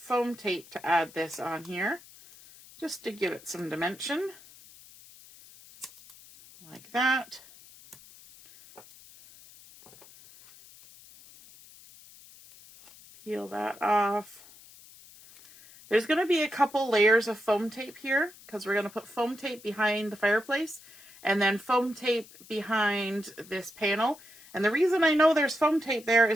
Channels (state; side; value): noise; left; hiss, 22 dB below the sound